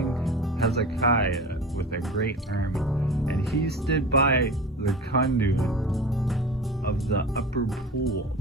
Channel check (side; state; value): both; normal; correlation 0.34